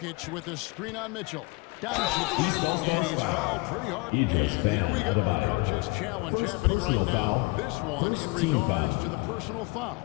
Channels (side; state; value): right; quieter; 26.1 dB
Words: with a screen on Mitchell. Doncic, and he's fouled pretty hard. And here we go, coach's challenge happening right now. This one in regards to the personal